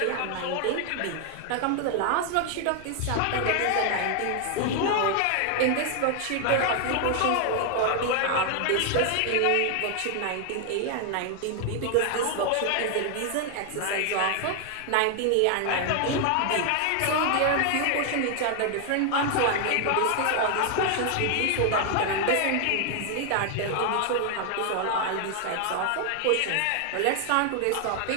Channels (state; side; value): different; both; correlation 0.00